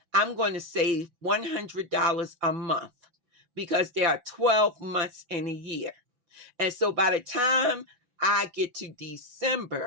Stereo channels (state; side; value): late; left; 6.0 ms